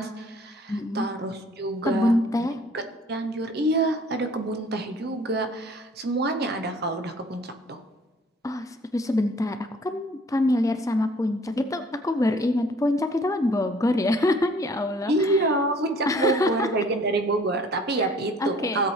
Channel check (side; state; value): both; normal; correlation 0.55